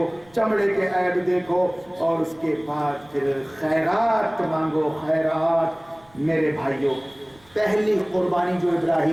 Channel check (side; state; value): right; noise; rumble, 29 dB below the sound